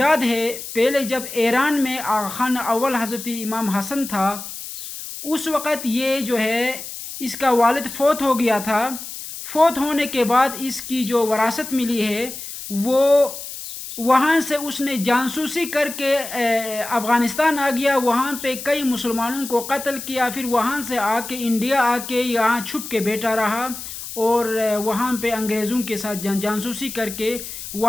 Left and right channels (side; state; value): left; noise; hiss, 10 dB below the sound